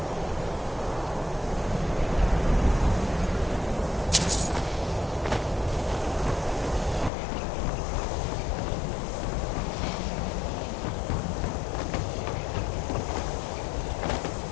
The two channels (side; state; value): right; drops out; at 7.1 s